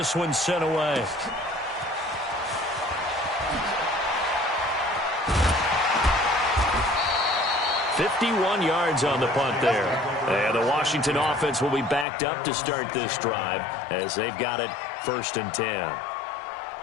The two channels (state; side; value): drops out; right; at 12.1 s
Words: one's sent away. "51 yards on the punt there. And the Washington offense will be backed up to start this drive as they've got it 1st and 10.